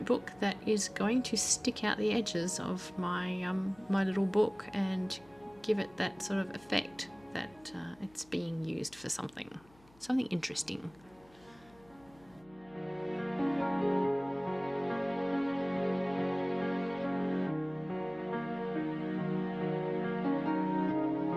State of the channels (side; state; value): left; noise; hum, 28 dB below the sound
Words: that is going to stick out the edges of my little book and give it that sort of effect that it's being used for something interesting.